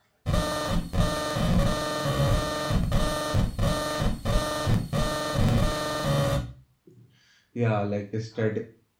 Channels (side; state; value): both; identical; correlation 1.00